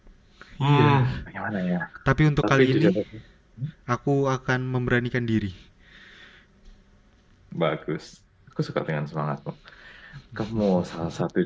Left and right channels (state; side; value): identical; both; correlation 1.00